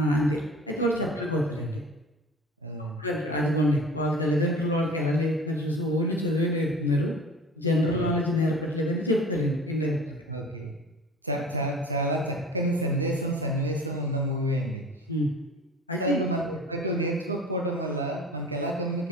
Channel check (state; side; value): normal; both; correlation 0.41